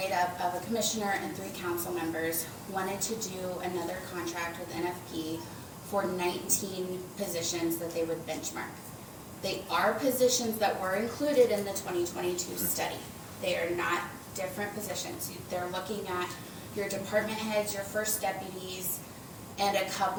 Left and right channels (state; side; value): identical; both; correlation 1.00